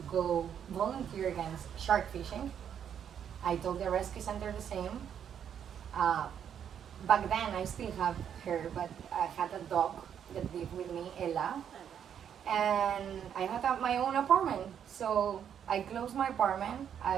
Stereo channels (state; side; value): quieter; left; 8.7 dB